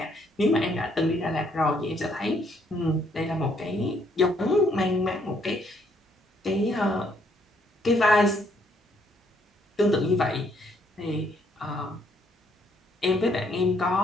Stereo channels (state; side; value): normal; both; correlation 0.68